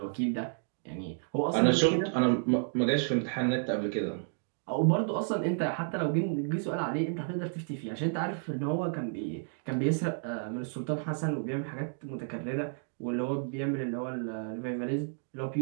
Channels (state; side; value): silent; left; digital silence